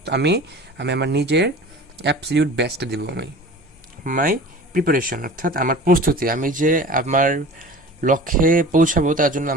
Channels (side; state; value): both; normal; correlation 0.39